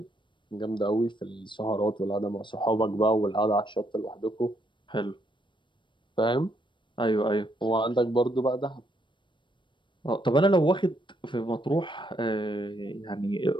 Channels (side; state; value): right; late; 0.23 ms